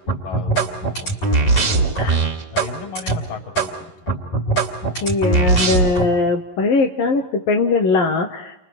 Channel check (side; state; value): right; late; 11 ms